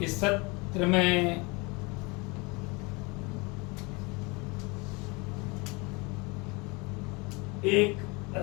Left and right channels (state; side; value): quieter; right; 27.5 dB